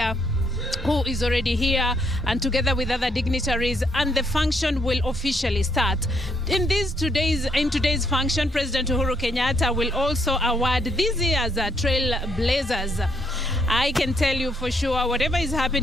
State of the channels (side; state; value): both; normal; correlation 0.72